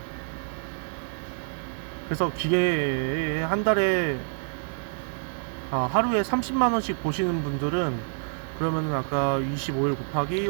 그래서 기계 한 달에 하루에 30만원씩 보시는 분들은 그러면은 아까 25일 곱하기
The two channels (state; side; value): silent; left; 60 dB below the other